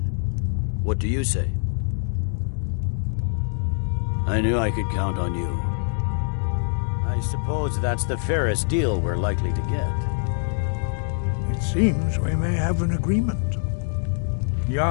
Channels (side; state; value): right; silent; 62 dB below the other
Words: what do you say? I knew I could count on you. I suppose that's the fairest deal we're likely to get. It seems we may have an agreement.